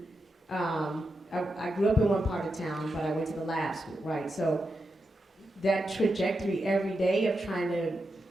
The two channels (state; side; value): normal; both; correlation 0.87